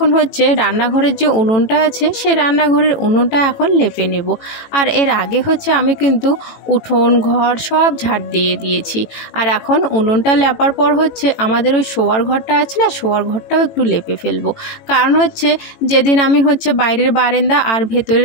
রান্নাঘরের যে উনুনটা আছে সেই রান্নাঘরের উনুনটা এখন লেপে নেব। আর এর আগে আমি কিন্তু উঠোন ঘর সব ঝাড় দিয়ে দিয়েছি। আর এখন উনুনটা লেপার পর আমাদের ওই শোয়ার ঘরটা আছে না, শোয়ার ঘরটাও একটু লেপে ফেলবো। কারণ যেদিন আমি বাইরের বারান্দা আর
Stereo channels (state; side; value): late; right; 18 ms